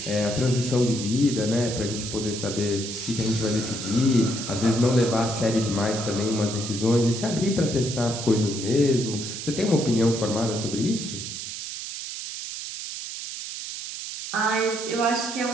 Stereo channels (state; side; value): noise; right; hiss, 7 dB below the sound